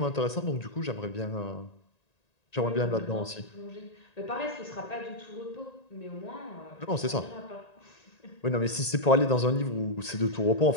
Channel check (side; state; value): right; late; 1.9 ms